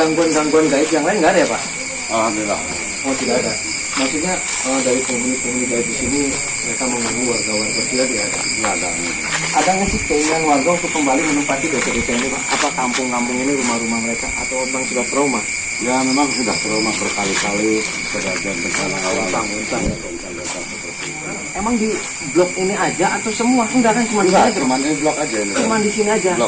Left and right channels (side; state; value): both; identical; correlation 1.00